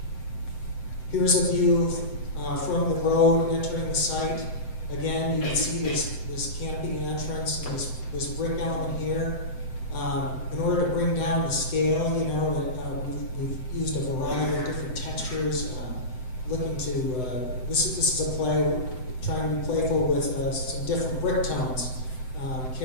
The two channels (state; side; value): late; right; 7.8 ms